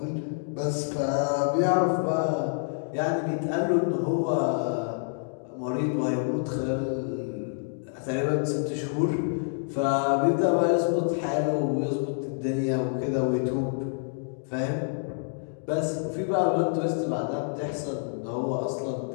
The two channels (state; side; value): silent; right; digital silence